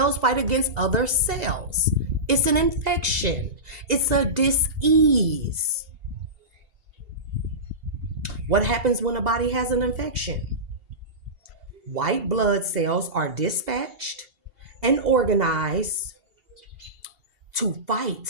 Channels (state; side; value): late; left; 2.8 ms